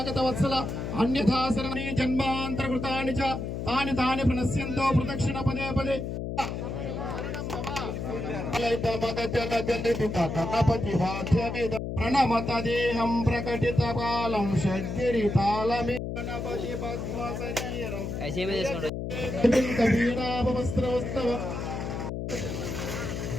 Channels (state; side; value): noise; left; hum, 4 dB below the sound